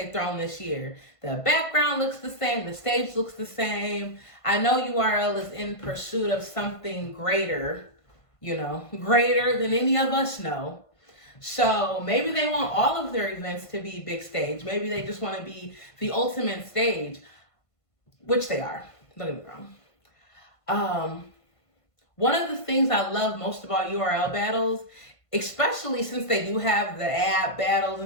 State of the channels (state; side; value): late; right; 1.5 ms